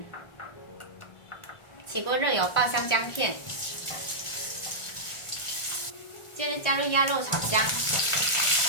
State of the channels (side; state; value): right; late; 1.4 ms